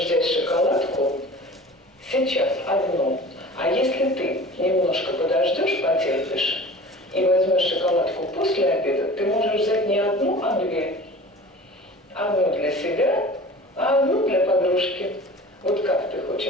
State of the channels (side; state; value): both; normal; correlation 0.40